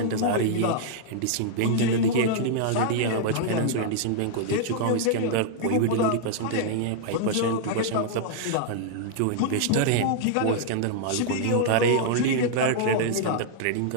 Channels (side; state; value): both; different; correlation -0.01